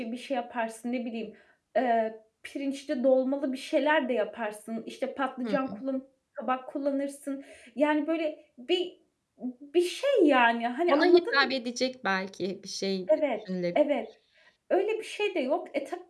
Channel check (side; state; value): both; identical; correlation 1.00